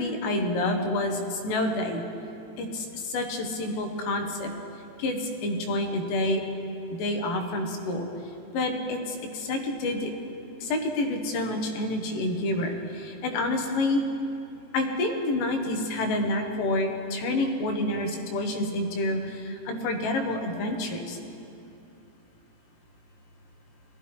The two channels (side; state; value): right; late; 18 ms